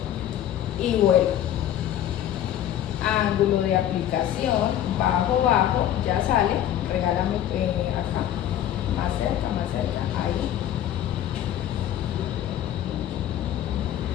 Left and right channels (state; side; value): quieter; right; 11.4 dB